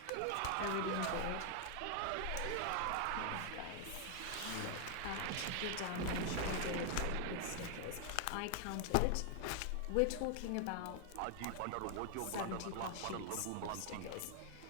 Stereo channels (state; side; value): different; both; correlation 0.00